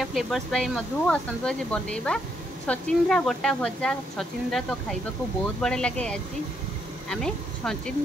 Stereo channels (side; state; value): both; normal; correlation 0.75